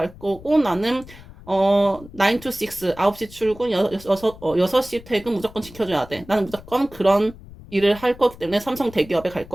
거고, 나는 9 to 6, 9시 출근, 6시 퇴근 무조건 지켜줘야 돼. 나는 무조건 그런 일을 할 거기 때문에 삼성 대기업에 갈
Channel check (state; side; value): noise; left; rumble, 19 dB below the sound